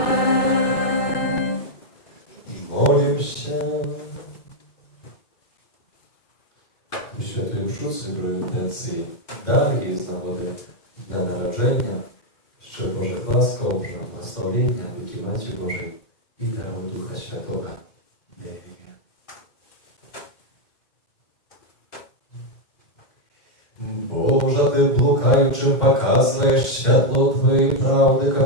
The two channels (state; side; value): late; right; 2.1 ms